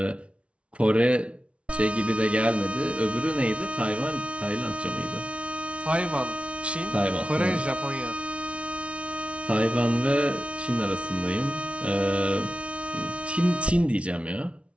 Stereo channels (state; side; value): late; left; 0.061 ms